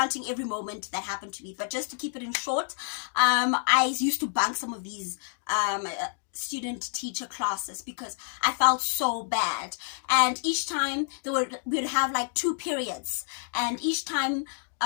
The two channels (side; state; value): right; silent; 59 dB below the other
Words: every moment that happened to me. But just to keep it in short, I used to bunk some of these student teacher classes because I felt so bad. And each time we would have like 2 periods, and each time